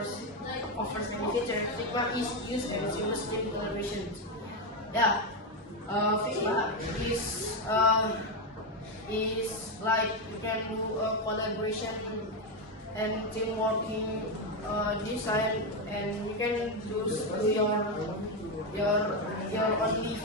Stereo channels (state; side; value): normal; both; correlation 0.08